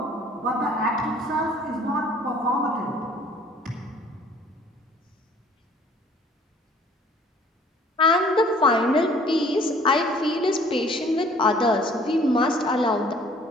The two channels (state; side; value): normal; both; correlation 0.55